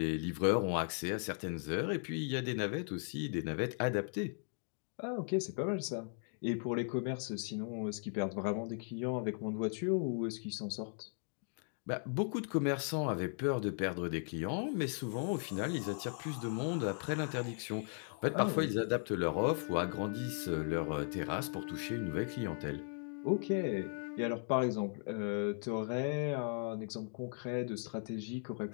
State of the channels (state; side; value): silent; right; 53 dB below the other